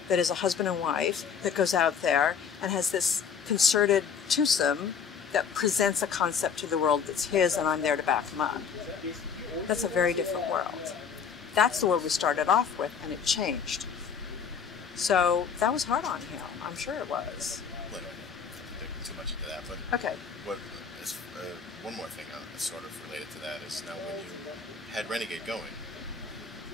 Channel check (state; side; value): quieter; right; 6.6 dB